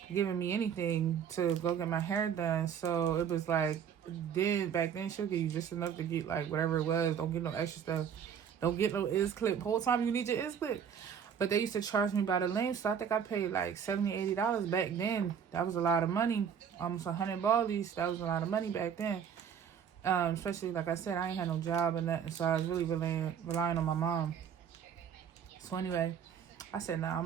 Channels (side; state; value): left; quieter; 7.9 dB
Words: giving me anything to go get my hair done. So it was like, back then she'll give you just enough to get like whatever it was. Don't get no extra stuff. Don't get no ends clip. Whole time you need your ends clip. But they used to charge me by the length, so I think I paid like $70, $80 back then. That was a lot of money. Almost 100 ballies. That was a lot of money back then. Especially, like I said, I ain't had no job or nothing, so I was really relying on my mom. So anyway, I said, nah, I'm